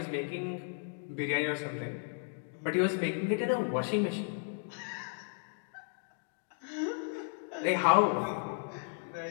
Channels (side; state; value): right; silent; 55 dB below the other